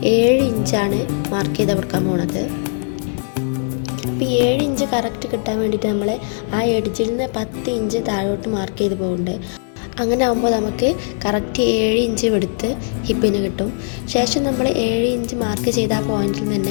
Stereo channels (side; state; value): right; silent; 62 dB below the other